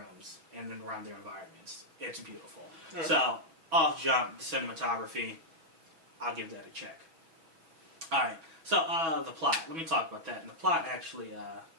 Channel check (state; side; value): late; left; 6.1 ms